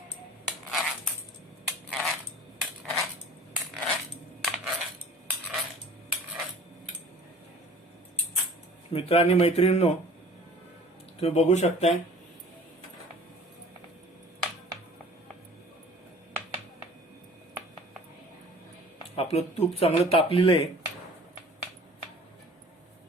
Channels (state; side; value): normal; both; correlation 0.46